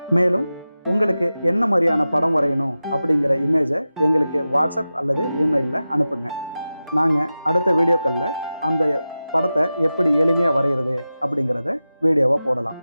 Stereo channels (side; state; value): both; inverted; correlation -0.94